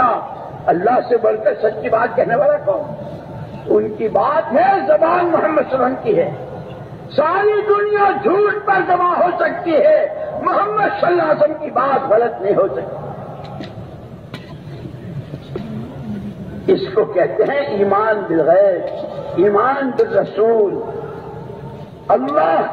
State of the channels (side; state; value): both; identical; correlation 1.00